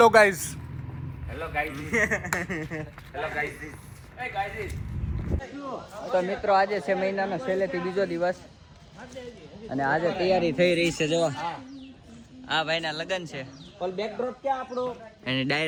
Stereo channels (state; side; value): identical; both; correlation 1.00